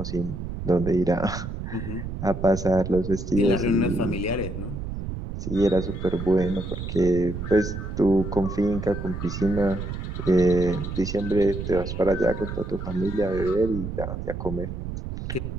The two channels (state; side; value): noise; right; rumble, 6 dB below the sound